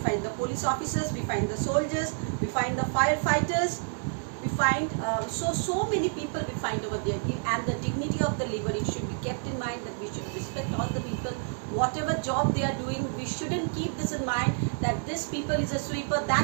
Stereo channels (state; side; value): silent; left; 59 dB below the other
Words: the police officers, we find the soldiers, we find the firefighters, we find so many people we find over there. And the dignity of the labor, it should be kept in mind that we should respect all the people, whatever job they are doing. We shouldn't keep this in mind that this people is a sweeper,